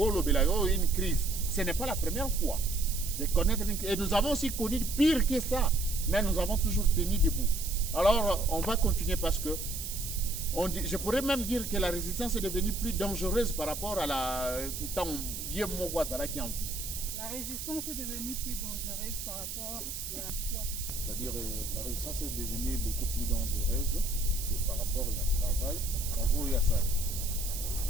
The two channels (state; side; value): noise; right; hiss, 6 dB below the sound